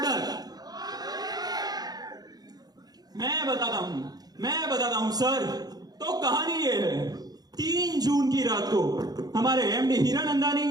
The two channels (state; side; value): late; left; 0.19 ms